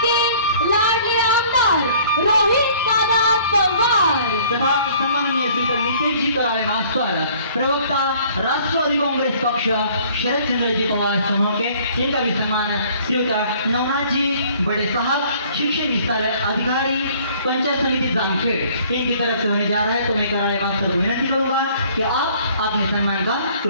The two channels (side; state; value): both; inverted; correlation -0.55